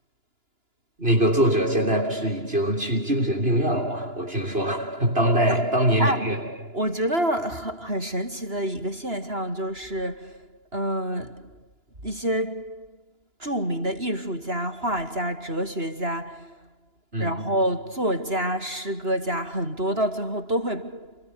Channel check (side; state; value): left; late; 2.9 ms